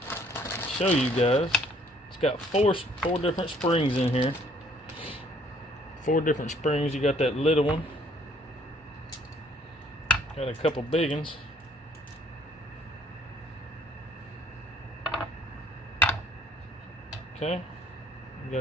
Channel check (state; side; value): normal; both; correlation 0.62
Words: show you guys. It's got four different springs in here. 4 different springs. You got that little one. Got a couple big ones. Okay, you